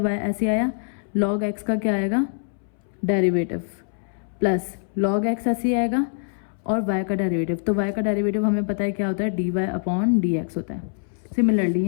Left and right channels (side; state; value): right; silent; 63 dB below the other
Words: ऐसे आया, log x का क्या आएगा डेरिवेटिव, प्लस log x ऐसे आएगा और y का डेरिवेटिव। तो y का डेरिवेटिव हमें पता है क्या होता है, dy अपॉन dx होता है। सिमिलरली